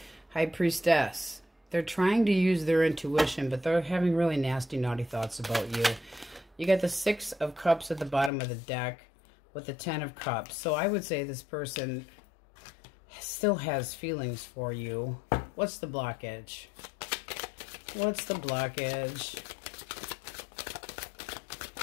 High Priestess. They're trying to use their intuition, but they're having really nasty, naughty thoughts about you. You got the 6 of Cups at the bottom of the deck with the 10 of Cups. So I would say this person still has feelings for you. What's the blockage? What's the blockage?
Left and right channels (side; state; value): right; drops out; at 8.3 s